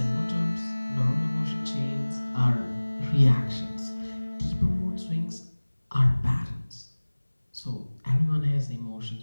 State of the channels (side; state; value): both; inverted; correlation -1.00